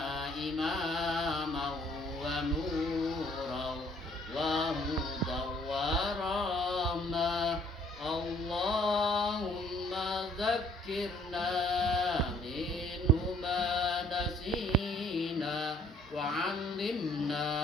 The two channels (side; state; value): both; normal; correlation 0.60